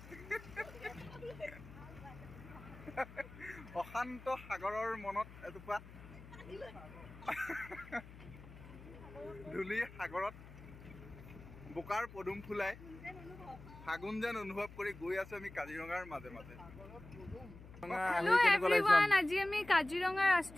অশান্ত সাগৰৰ মনত এটুপা ধূলি সাগৰত বোকাৰ পদুম ফুলাই ফাগুন যেন অনুভৱ কৰি গৈ আছো আমি কাজিৰঙাৰ মাজে মাজে আজি আমি কাজিৰঙা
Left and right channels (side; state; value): left; noise; hum, 17 dB below the sound